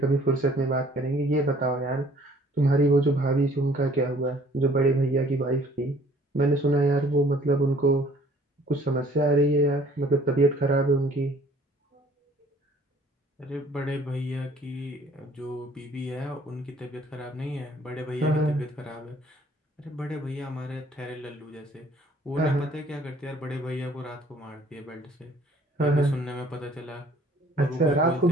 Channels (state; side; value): normal; both; correlation 0.57